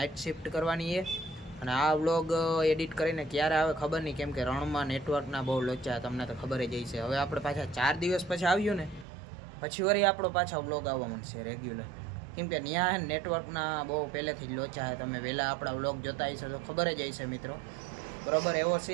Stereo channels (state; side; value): drops out; left; at 9.1 s